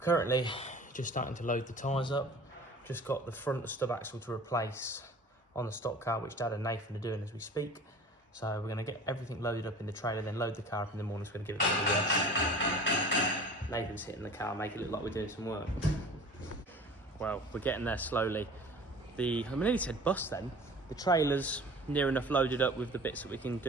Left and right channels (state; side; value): normal; both; correlation 0.42